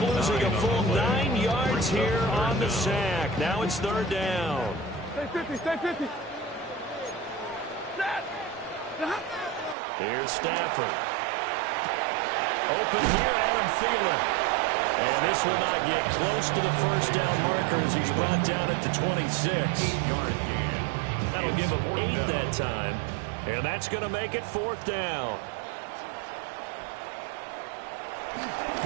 a full 9 yards here on the sack. Now it's 3rd down. Stay 50, stay 50. Set! Here's Stafford. Open here, Adam Thielen. And this will not get close to the first down marker as he's brought down at the 26. 8-yard gain. That'll give him 8 that time. And that's going to make it 4th down.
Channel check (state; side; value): drops out; left; at 9.8 s